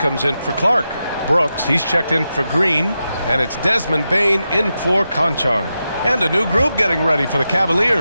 in for Clark. Brooks, he's checked in for Green. And it's Desmond Bane in for Conchar. And a new group getting ready for the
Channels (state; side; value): inverted; both; correlation -0.89